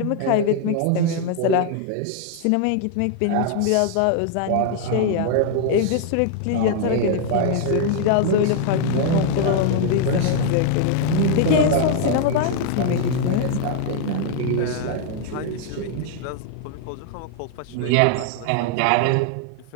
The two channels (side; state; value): both; different; correlation 0.00